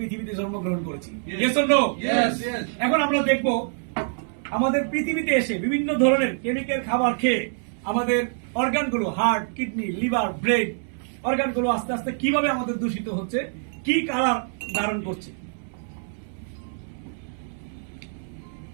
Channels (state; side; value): silent; left; 61 dB below the other